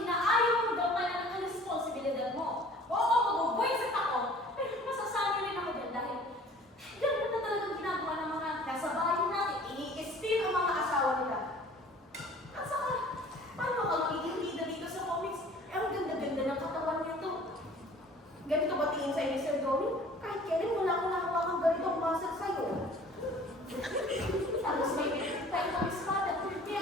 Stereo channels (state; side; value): normal; both; correlation 0.49